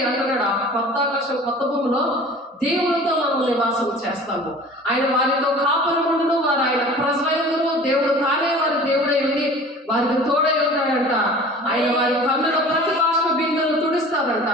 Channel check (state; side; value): normal; both; correlation 0.43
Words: అంటున్నాడు. ఆ కొత్త ఆకాశం కొత్త భూమిలో దేవునితో మనం నివాసం చేస్తాము. ఆయన వారితో కాపురముండును, వారు ఆయన ప్రజలందరూ, దేవుడు తానే వారి దేవుడై ఉండి వారికి తోడై ఉంటాడంట. ఆయన వారి కన్నుల ప్రతి బాష్ప బిందువును తుడిస్తాడంట.